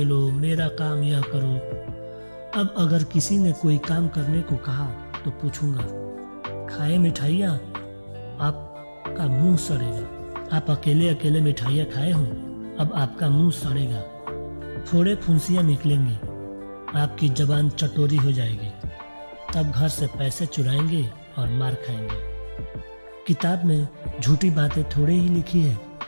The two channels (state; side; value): inverted; both; correlation -1.00